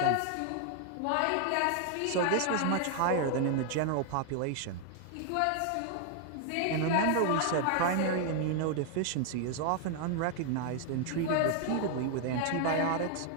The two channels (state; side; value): different; both; correlation 0.00